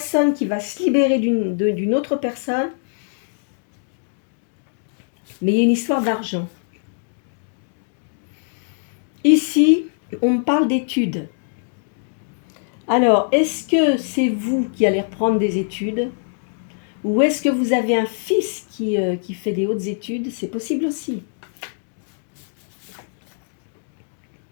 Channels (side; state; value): right; silent; digital silence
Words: qui va se libérer d'une autre personne. Mais il y a une histoire d'argent. Ici, on me parle d'études. Alors, est-ce que c'est vous qui allez reprendre des études? Ou est-ce que vous avez un fils qui fait des hautes études? C'est possible aussi.